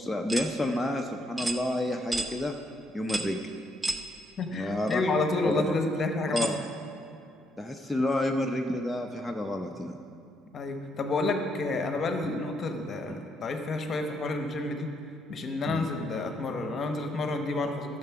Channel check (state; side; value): normal; both; correlation 0.75